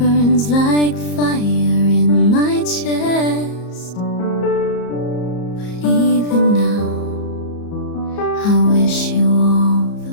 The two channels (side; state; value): right; late; 34 ms